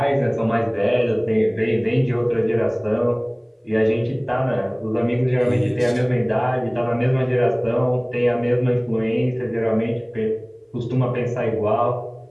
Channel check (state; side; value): identical; both; correlation 1.00